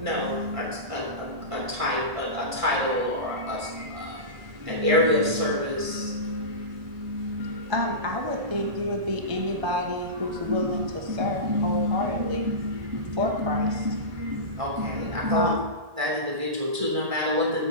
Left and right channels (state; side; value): late; left; 1.7 ms